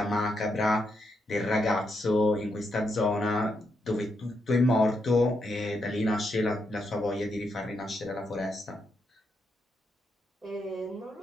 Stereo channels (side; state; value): both; normal; correlation 0.81